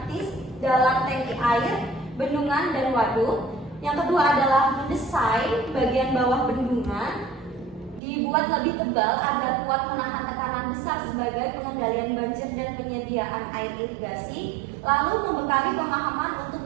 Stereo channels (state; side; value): drops out; left; at 8.0 s